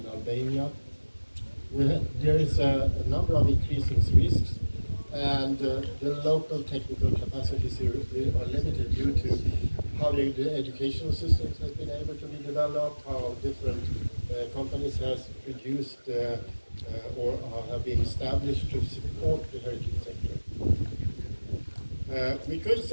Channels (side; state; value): both; inverted; correlation -1.00